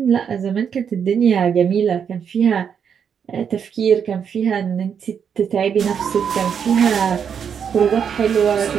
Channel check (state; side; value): quieter; left; 7.4 dB